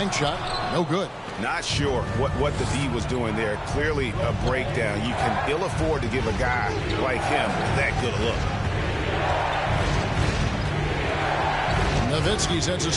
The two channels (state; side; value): identical; both; correlation 1.00